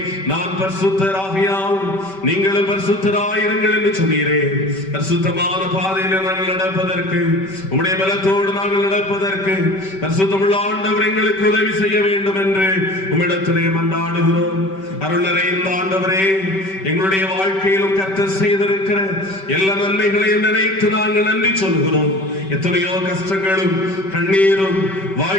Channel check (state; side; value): late; right; 5.2 ms